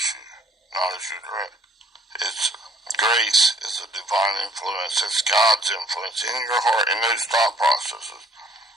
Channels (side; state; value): both; normal; correlation 0.61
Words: you, not as you direct. It's grace is a divine influence. It's God's influence in your heart, in those thought processes.